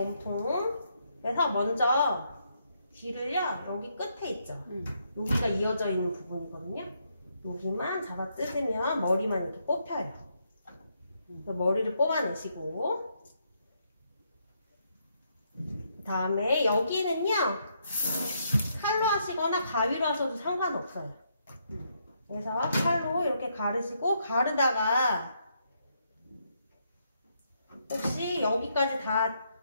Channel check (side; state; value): both; inverted; correlation -0.76